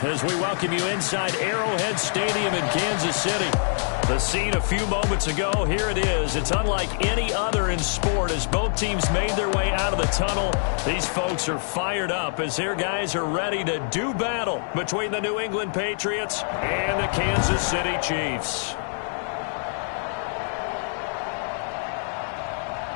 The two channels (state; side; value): silent; right; 62 dB below the other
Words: as we welcome you inside Arrowhead Stadium in Kansas City. The scene a few moments ago, here it is. It's unlike any other in sport as both teams made their way out of the tunnel. These folks are fired up as their guys are ready to do battle between the New England Patriots and the Kansas City Chiefs.